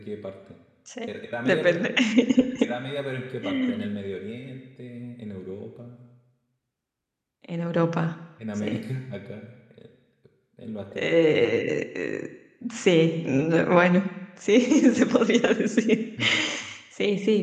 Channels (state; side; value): identical; both; correlation 1.00